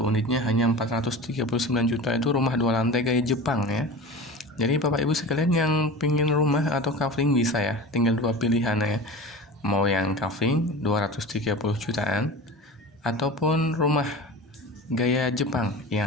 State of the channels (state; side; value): normal; both; correlation 0.33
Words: unitnya hanya 439 juta, itu rumah 2 lantai gaya Jepang ya. Jadi Bapak Ibu sekalian yang pingin rumah atau kafling bisa ya, tinggal dua pilihan ya. Mau yang kafling 230 jutaan ataupun rumah gaya Jepang yang